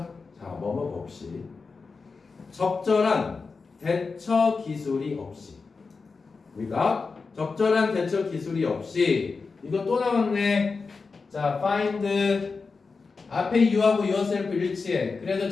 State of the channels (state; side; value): quieter; right; 4.5 dB